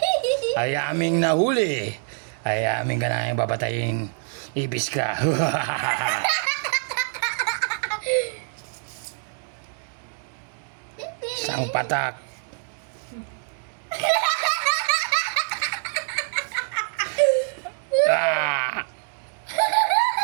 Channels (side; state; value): left; silent; 62 dB below the other